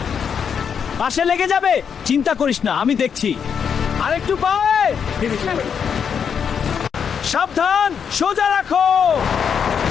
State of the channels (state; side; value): quieter; right; 7.2 dB